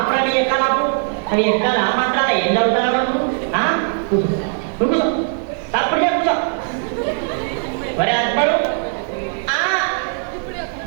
నీ ఎక్కాలాపు అవి ఎక్కాలి ఆ మాత్రాల ఏం చదువుతారా కూర్చో తప్పుడు కూర్చో. ఒరే అక్బరు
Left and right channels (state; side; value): silent; left; 59 dB below the other